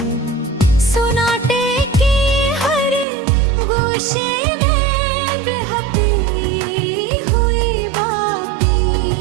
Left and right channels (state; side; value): drops out; left; at 3.1 s